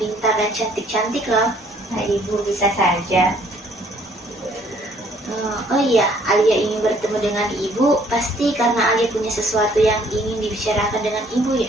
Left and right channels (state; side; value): normal; both; correlation 0.62